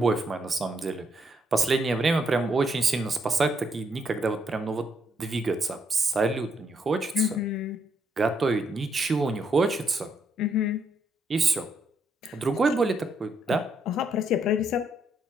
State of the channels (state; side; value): normal; both; correlation 0.74